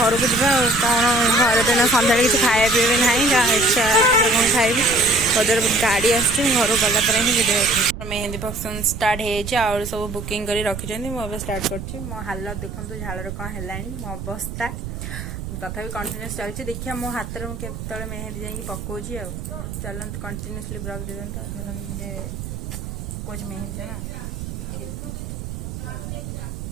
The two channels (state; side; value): noise; right; rumble, 8 dB below the sound